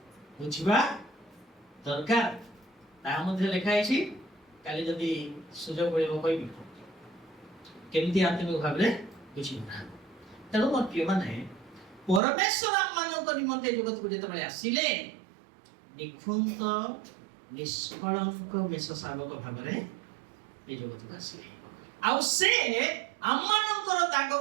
ବୁଝିବା ଦରକାର। ତାହା ମଧ୍ୟ ଲେଖା ହେଇଛି, କାଲି ଯଦି ସୁଯୋଗ ମିଳିବ କହିବି କେମିତି ଆତ୍ମିକ ଭାବରେ ବୁଝିବା। ତେଣୁ ମୋର ପ୍ରିୟମାନେ, ପରମେଶ୍ୱର ଆମମାନଙ୍କ ନିମନ୍ତେ ଜଗତକୁ ଯେତେବେଳେ ଆସିଲେ, ନିଖୁନ୍ତ ନିଷ୍କଳଙ୍କ ମେଷ ଶାବକ ଭାବରେ ଏ ଜଗତକୁ ଆସିଲେ। ଆଉ ସେ ଆମମାନଙ୍କର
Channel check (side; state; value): left; drops out; at 12.2 s